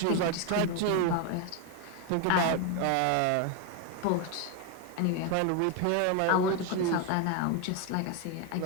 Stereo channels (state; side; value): different; both; correlation 0.02